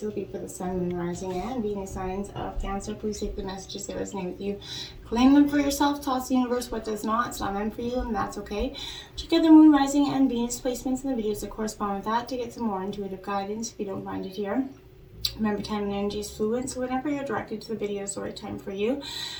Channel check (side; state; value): both; identical; correlation 1.00